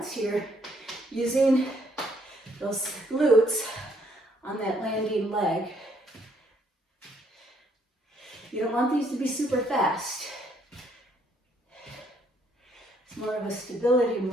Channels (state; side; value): normal; both; correlation 0.68